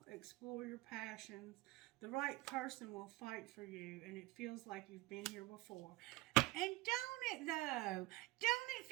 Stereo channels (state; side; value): quieter; left; 19.8 dB